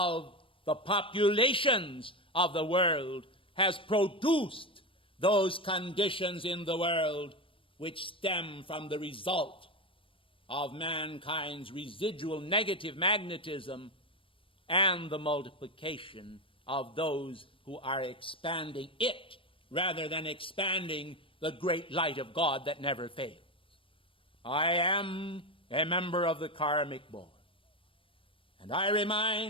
the populations of the world has produced those conditions in the world which stem from the result of mankind's residual negative magnetism and the multiplication of those who are expanding it rather than expanding the great light of God that never fails. I am a member of the karmic board, and I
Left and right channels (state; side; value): late; right; 0.25 ms